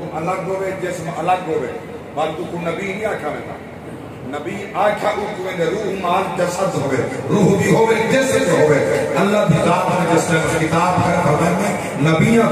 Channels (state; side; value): identical; both; correlation 1.00